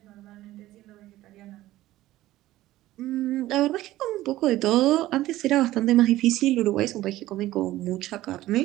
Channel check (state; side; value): quieter; left; 15.7 dB